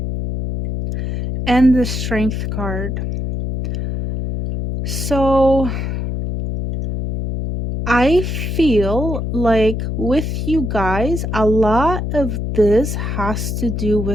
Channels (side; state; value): left; noise; hum, 3 dB below the sound